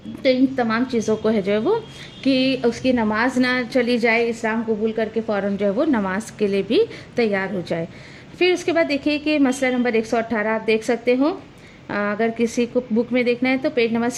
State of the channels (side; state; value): both; identical; correlation 1.00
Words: तो इन तमाम चीज़ों को है जो है वो कि उसकी नमाज ना चली जाए, इस्लाम कबूल करके फ़ौरन जो है वो नमाज के लिए भी तैयार हो जाए। फिर उसके बाद देखिए कि मसला नंबर 118 आप देख सकते हो, अगर किसी को बुक में देखना है तो पेज नंबर